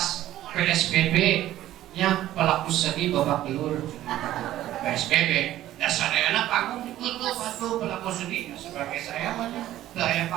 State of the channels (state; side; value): quieter; left; 13.7 dB